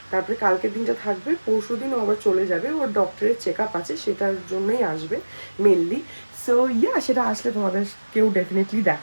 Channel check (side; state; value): both; inverted; correlation -1.00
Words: তারপরে কালকের দিনটা থাকবে, পরশু দিন ও আবার চলে যাবে, ওর ডক্টরের চেক আপ আছে, সেটার জন্যই আসবে মেনলি। সো সেটা আসলে তোমাদের কেউ ডেফিনেটলি